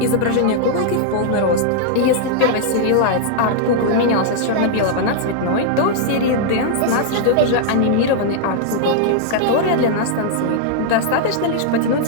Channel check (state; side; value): different; both; correlation -0.01